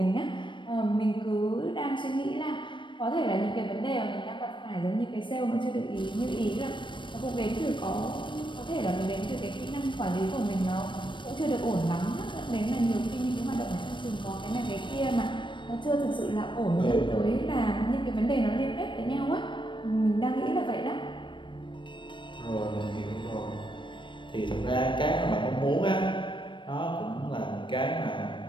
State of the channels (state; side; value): late; right; 0.23 ms